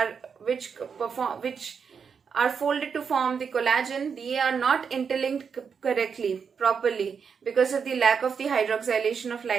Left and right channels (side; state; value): left; quieter; 6.3 dB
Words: are folded to form the collagen, they are not interlinked correctly, properly, because of the lack of the hydroxylation of